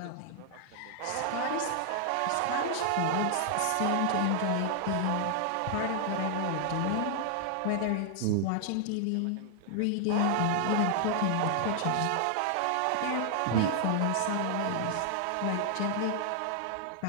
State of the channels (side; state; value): both; different; correlation 0.00